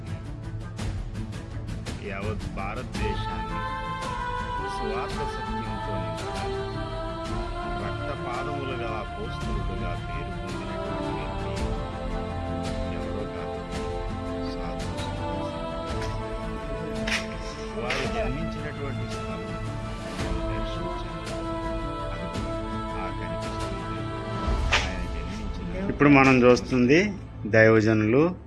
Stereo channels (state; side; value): identical; both; correlation 1.00